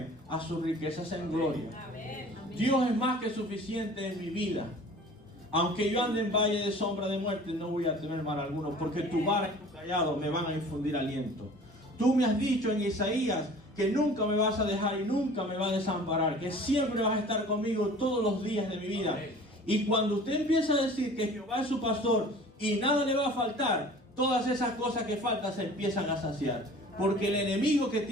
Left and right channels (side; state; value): both; normal; correlation 0.45